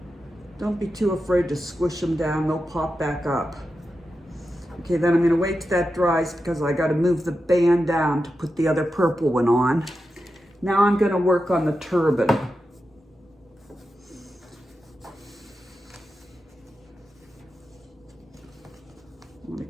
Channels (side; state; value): both; normal; correlation 0.90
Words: Don't be too afraid to squish them down, they'll pop back up. Okay, then I'm gonna wait till that dries because I gotta move the band down to put the other purple one on. Now I'm gonna work on the turban. I wanna